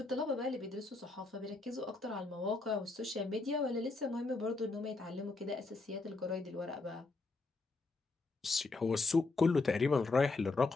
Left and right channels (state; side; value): quieter; right; 3.6 dB